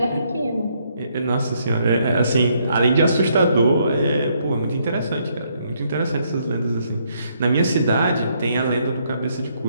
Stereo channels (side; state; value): both; inverted; correlation -0.72